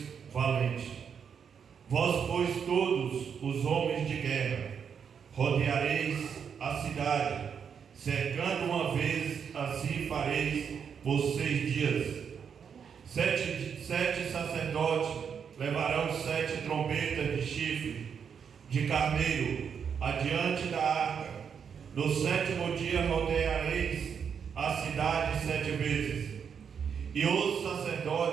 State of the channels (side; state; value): left; quieter; 7.1 dB